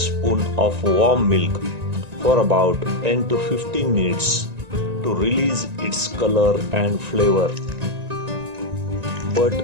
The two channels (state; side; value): late; left; 1.9 ms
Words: of warm milk for about 10 to 15 minutes to release its color and flavor. But